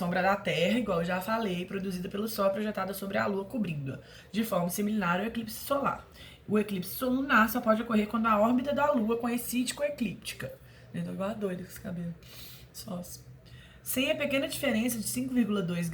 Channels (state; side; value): identical; both; correlation 1.00